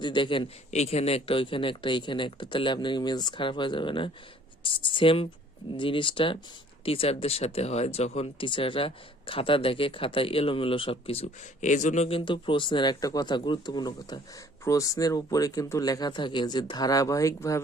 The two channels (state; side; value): normal; both; correlation 0.55